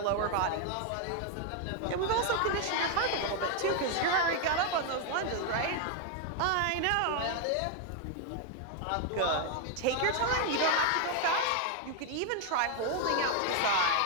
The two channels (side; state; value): both; different; correlation 0.01